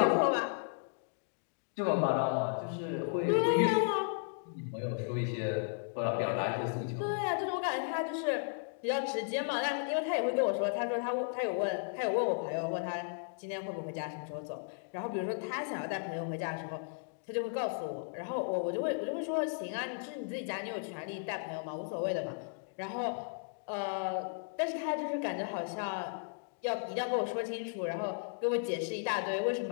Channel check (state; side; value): silent; right; digital silence